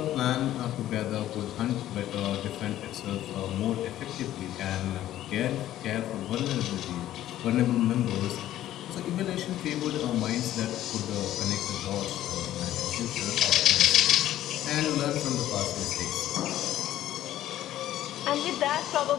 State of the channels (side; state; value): right; quieter; 13.2 dB